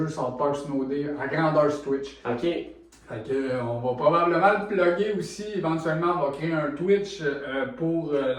South Park Snow Day à grandeur sur Twitch. Ok. Fait que, on va probablement le plugger aussi, éventuellement on va créer un Twitch pour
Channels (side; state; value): both; identical; correlation 1.00